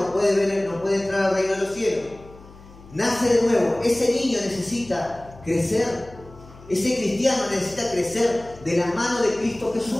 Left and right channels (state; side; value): noise; left; hum, 21 dB below the sound